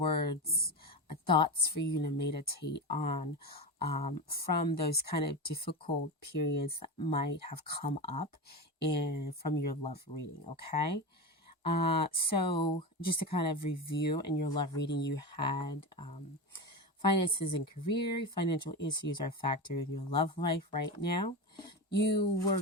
thoughts for you to meditate on from those kind of difficult periods that might have come up from your love reading, okay? So, just to kind of review, in your love reading, you had finances and career, financial issues are a factor in your love life right now. You were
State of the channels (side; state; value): both; normal; correlation 0.21